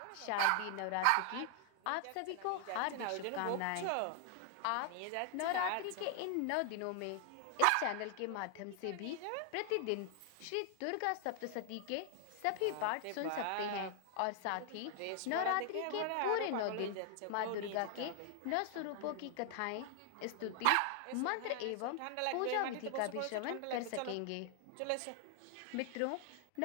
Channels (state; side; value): different; both; correlation 0.00